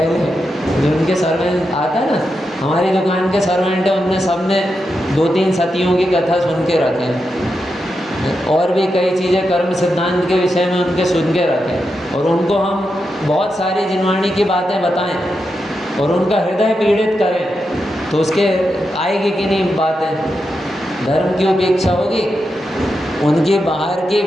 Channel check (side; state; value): both; normal; correlation 0.87